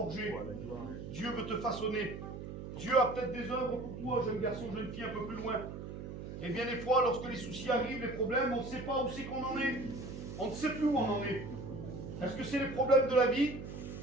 Dieu veut te façonner. Dieu a peut-être des œuvres pour toi, jeune garçon, jeune fille, un peu plus loin. Et bien des fois, lorsque les soucis arrivent, les problèmes, on ne sait pas où c'est qu'on en est. On ne sait plus où on en est. Est-ce que c'est les problèmes de la vie?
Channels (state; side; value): noise; right; hum, 9 dB below the sound